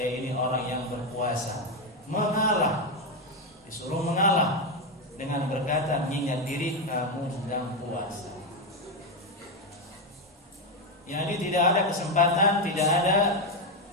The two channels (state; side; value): normal; both; correlation 0.08